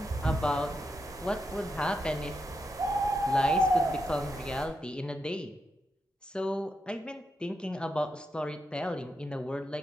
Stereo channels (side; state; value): both; normal; correlation 0.84